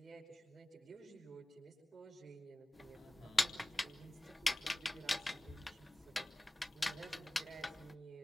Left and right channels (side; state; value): both; normal; correlation 0.98